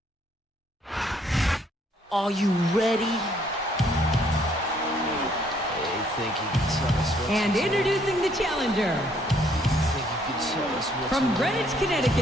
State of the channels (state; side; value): normal; both; correlation 0.66